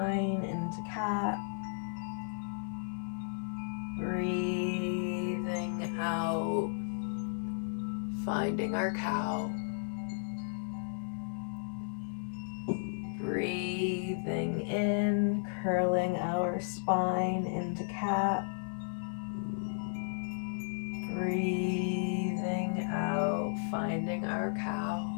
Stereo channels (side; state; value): right; silent; 55 dB below the other